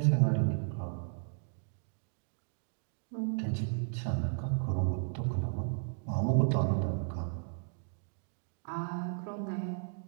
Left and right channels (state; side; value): silent; left; digital silence